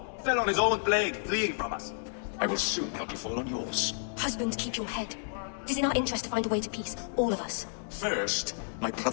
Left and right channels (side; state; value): right; silent; digital silence